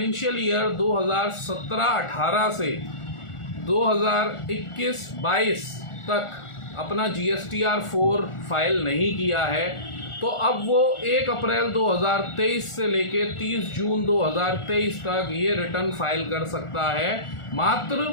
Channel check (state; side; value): late; right; 1.4 ms